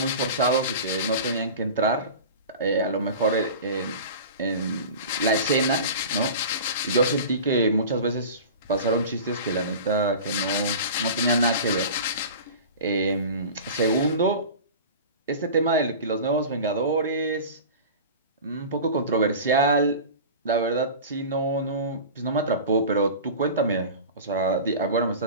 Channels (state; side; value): inverted; both; correlation -0.35